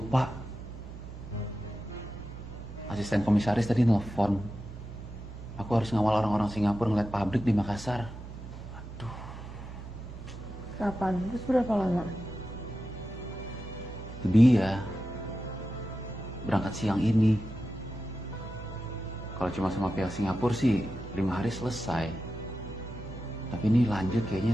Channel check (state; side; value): noise; right; hum, 12 dB below the sound